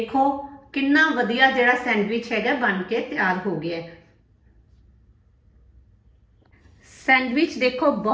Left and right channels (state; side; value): identical; both; correlation 1.00